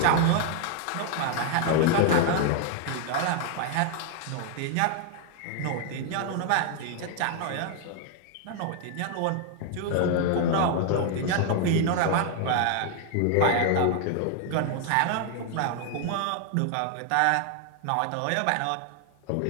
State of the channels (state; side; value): different; both; correlation 0.00